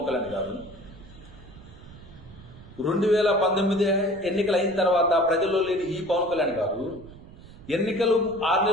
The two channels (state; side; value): noise; right; rumble, 19 dB below the sound